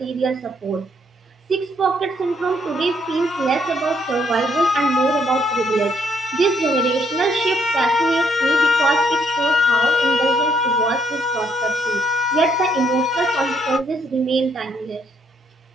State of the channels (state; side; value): normal; both; correlation 0.71